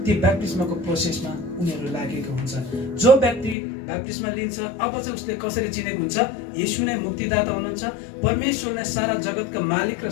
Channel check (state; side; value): drops out; right; at 3.6 s